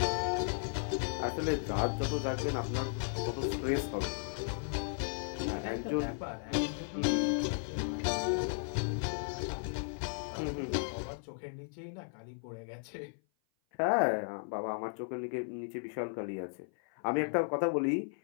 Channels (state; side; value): silent; right; 54 dB below the other